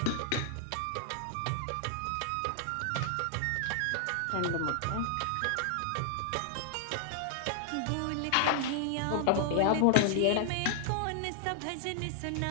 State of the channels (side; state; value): both; different; correlation -0.01